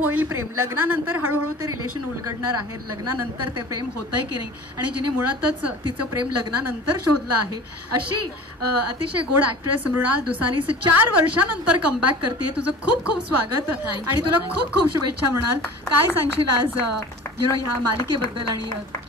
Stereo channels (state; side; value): normal; both; correlation 0.41